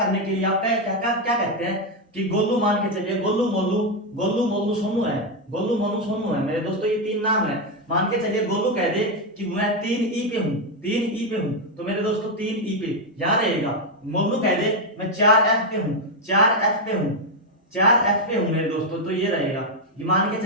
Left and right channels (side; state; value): both; normal; correlation 0.04